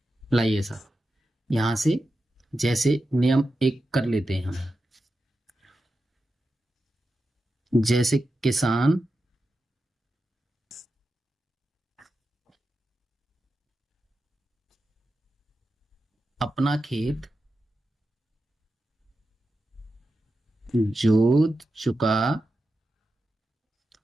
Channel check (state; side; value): normal; both; correlation 0.90